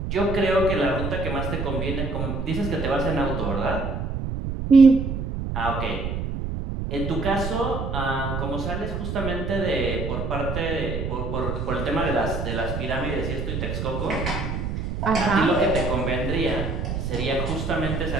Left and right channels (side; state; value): right; noise; rumble, 3 dB below the sound